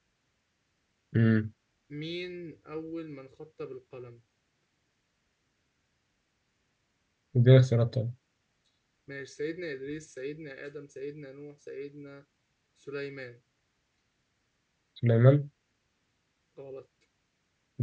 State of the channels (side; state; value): both; identical; correlation 1.00